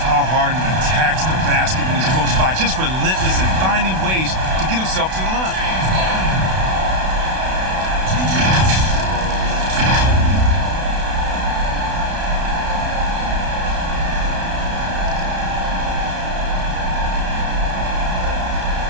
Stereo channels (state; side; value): late; left; 32 ms